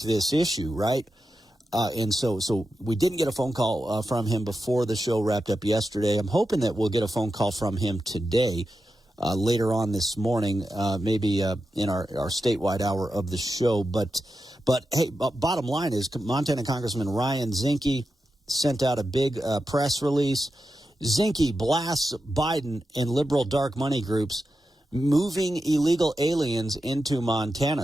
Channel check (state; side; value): normal; both; correlation 0.90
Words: issue, right? And so we didn't get a phone call from him before the show wrapped up yesterday. I'm hoping that we'll get a phone call from him today, later on this morning, maybe in our statewide hour of the show. But hey, bottom line is Montana Congressman Ryan Zinke sent out a big press release. Zinke blasts Biden and liberal dark money groups moving illegal aliens into